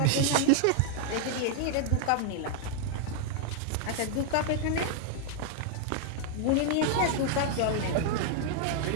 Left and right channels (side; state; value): both; different; correlation 0.00